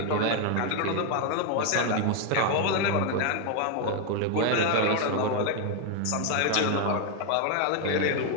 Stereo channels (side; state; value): both; different; correlation 0.00